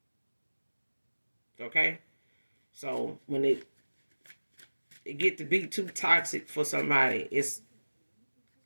Okay? So when it get to be too toxic for somebody, it's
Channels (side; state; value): both; inverted; correlation -1.00